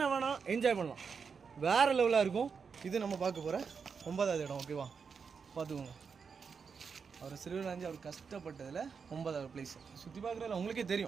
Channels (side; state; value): left; quieter; 5.8 dB